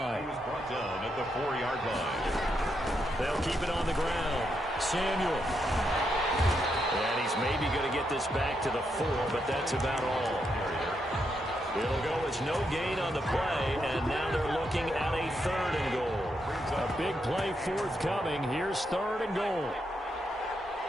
He was brought down at the 4-yard line. They'll keep it on the ground. Samuel. And he's maybe going to get this back to the 4, but that's about all. It'll go as no gain on the play, and now they're looking at a 3rd and goal. A big play forthcoming. Here's 3rd and goal.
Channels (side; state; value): both; normal; correlation 0.81